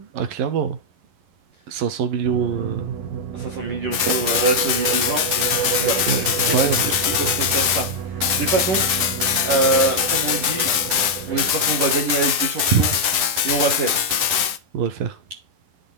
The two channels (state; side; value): late; left; 10 ms